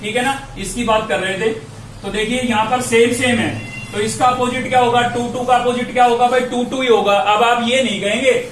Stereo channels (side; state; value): both; identical; correlation 1.00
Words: ठीक है ना, इसकी बात कर रहे थे। तो देखिए यहाँ पर सेम है, तो इसका अपोजिट क्या होगा? 2 का अपोजिट क्या होगा भाई? 2 ही होगा। अब आप ये नहीं कहेंगे